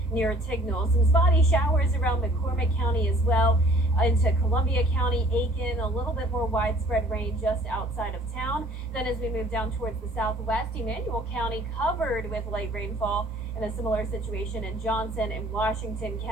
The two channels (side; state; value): both; normal; correlation 0.54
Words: near Tignall. Some spotty showers around McCormick County as well. Into Columbia County, Aiken, a little bit more widespread rain just outside of town. Then as we move down towards the southwest, Emmanuel County covered with light rainfall, and a similar situation in Johnson and Washington